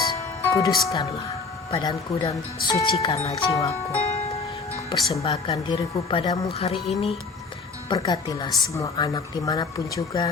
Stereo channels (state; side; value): quieter; right; 4.4 dB